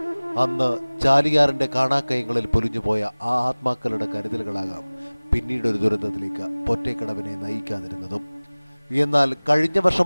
അന്ന് ചാലിയാറിന്റെ കാണാക്കയങ്ങളിൽ പൊലിഞ്ഞുപോയ ആ ആത്മാക്കളുടെ കരുതലുകളാകാം പിന്നീടൊരു ദുരന്തത്തിലേക്ക് പൊറ്റേക്കടവിനെ നയിക്കാതിരുന്നതും. എന്നാൽ കഴിഞ്ഞ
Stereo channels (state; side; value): inverted; both; correlation -1.00